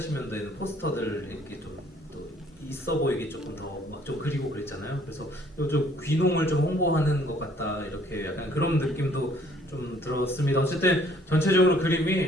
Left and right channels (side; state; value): both; normal; correlation 0.60